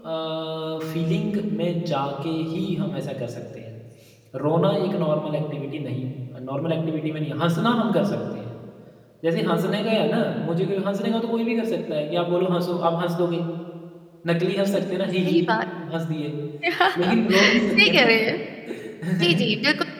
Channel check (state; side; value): identical; both; correlation 1.00